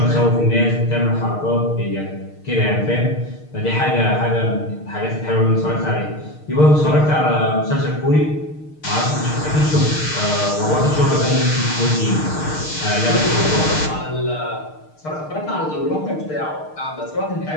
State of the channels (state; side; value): late; right; 6.5 ms